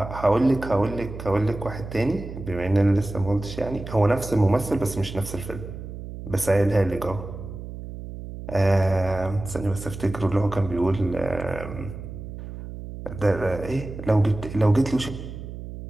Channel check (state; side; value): noise; right; hum, 10 dB below the sound